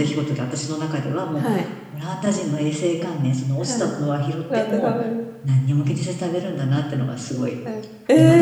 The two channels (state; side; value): identical; both; correlation 1.00